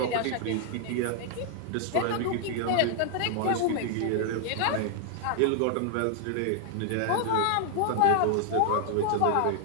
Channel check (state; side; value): different; both; correlation 0.00